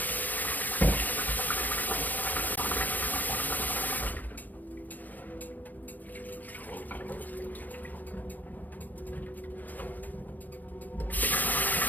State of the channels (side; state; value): right; late; 0.083 ms